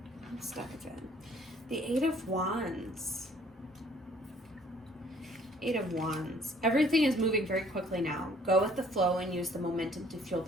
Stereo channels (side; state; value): both; normal; correlation 0.59